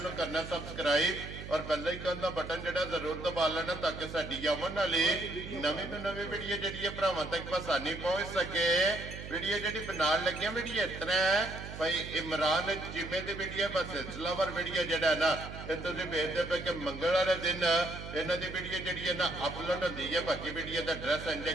नूं करना सबसक्राइब और बेल आइकन दा बटन जिहड़ा जरूर दबा लेना ताकि साडी आवन वाली नवीं तो नवीं वीडियो जिहड़ी है भरावां तक आसानी पहुंच सके। वीडियो जिहड़ी बनाउण लगे वीडियो इस तरह है भाई इमरान चीमे की वीडियो बस सिलसिलावार वीडियो जिहड़ा है ना ये तुसीं वेखदे पे कि मंगल वाले दिन इन्हां दी वीडियो जिहड़ी है ना अपलोड होंदी है। बाकी वीडियो का एड्रैस है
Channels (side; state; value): right; noise; hum, 10 dB below the sound